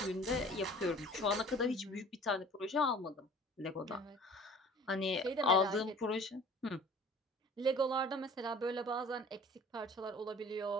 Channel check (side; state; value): both; normal; correlation 0.46